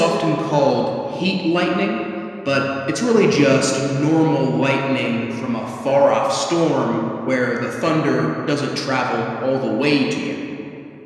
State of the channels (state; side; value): identical; both; correlation 1.00